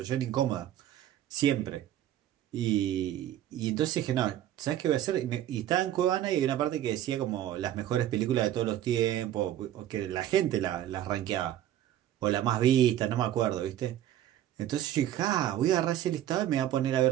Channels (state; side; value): quieter; left; 12.2 dB